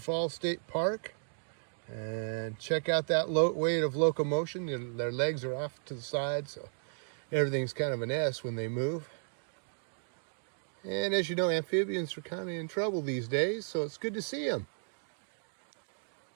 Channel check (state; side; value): silent; left; digital silence